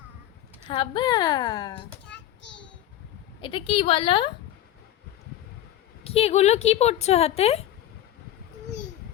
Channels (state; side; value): quieter; right; 12.8 dB